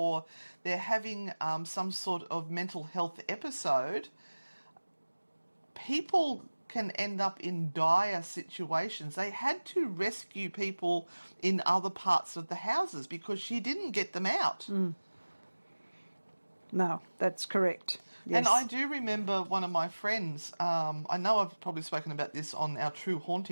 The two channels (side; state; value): both; inverted; correlation -1.00